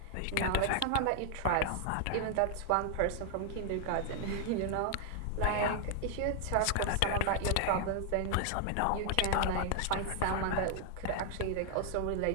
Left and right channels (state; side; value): different; both; correlation 0.00